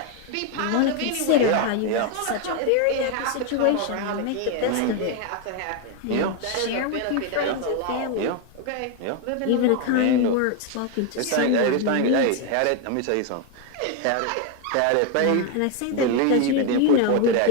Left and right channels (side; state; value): both; different; correlation 0.01